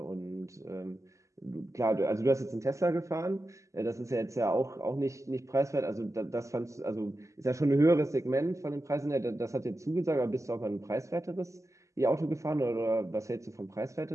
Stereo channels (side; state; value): left; late; 0.15 ms